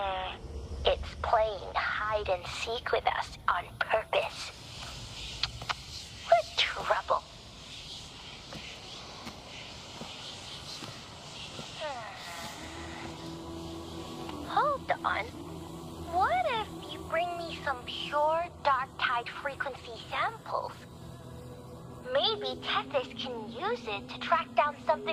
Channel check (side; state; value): both; identical; correlation 1.00